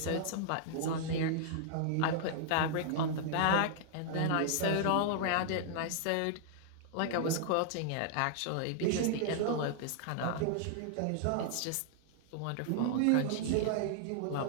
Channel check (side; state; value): both; different; correlation -0.01